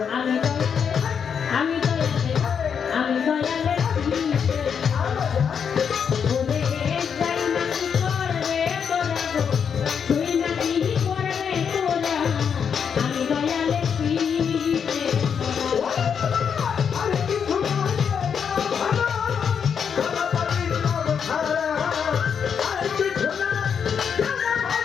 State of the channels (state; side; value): quieter; right; 7.1 dB